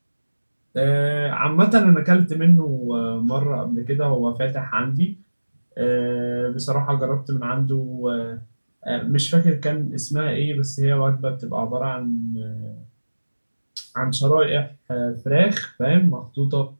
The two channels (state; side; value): inverted; both; correlation -1.00